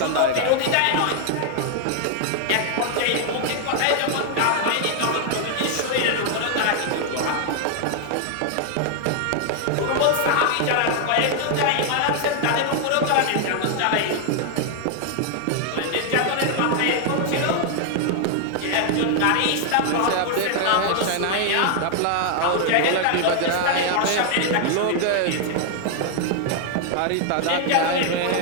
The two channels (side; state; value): both; different; correlation 0.00